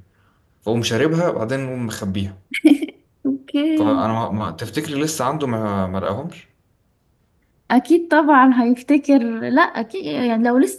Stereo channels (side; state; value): both; identical; correlation 1.00